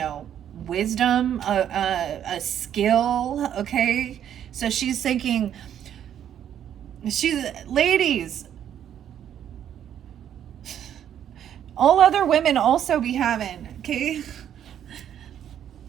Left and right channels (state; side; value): quieter; left; 9.9 dB